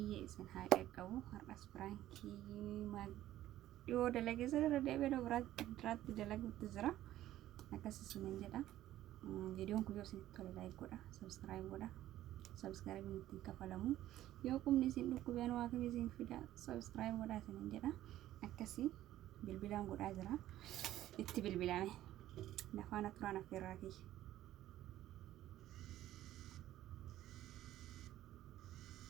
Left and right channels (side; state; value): left; quieter; 13.8 dB